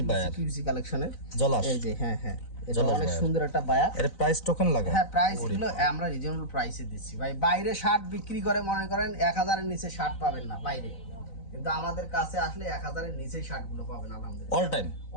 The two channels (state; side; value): late; right; 4.0 ms